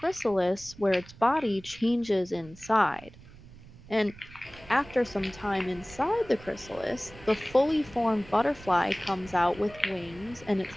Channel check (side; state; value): right; noise; rumble, 20 dB below the sound